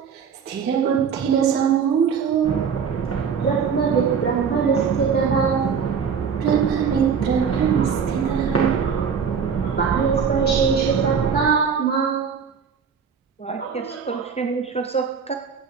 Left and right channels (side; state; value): left; quieter; 6.6 dB